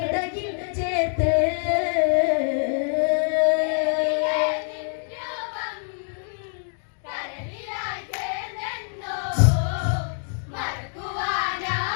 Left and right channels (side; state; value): right; silent; 58 dB below the other